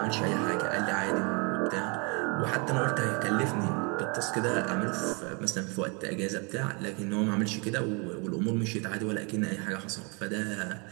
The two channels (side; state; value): left; quieter; 32.1 dB